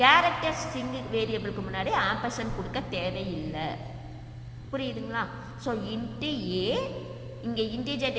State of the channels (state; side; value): identical; both; correlation 1.00